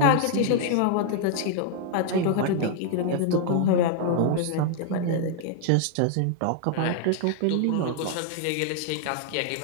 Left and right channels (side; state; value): both; different; correlation 0.00